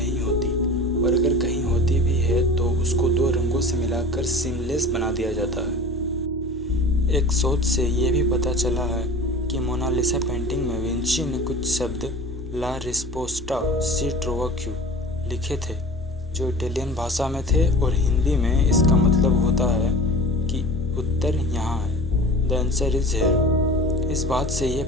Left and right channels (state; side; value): normal; both; correlation 0.39